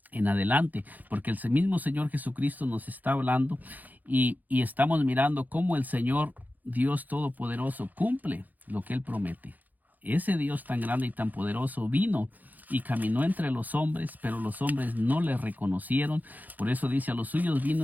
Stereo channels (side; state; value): left; late; 0.083 ms